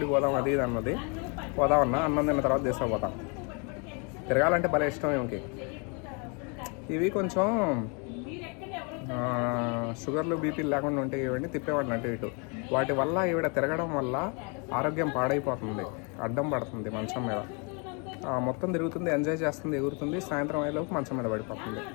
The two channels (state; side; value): quieter; right; 34.7 dB